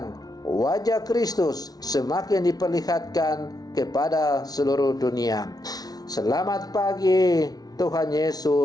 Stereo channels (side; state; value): right; late; 0.19 ms